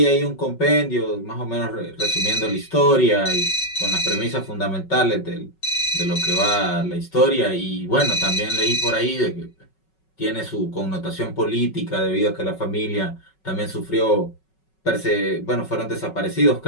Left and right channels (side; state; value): right; late; 5.4 ms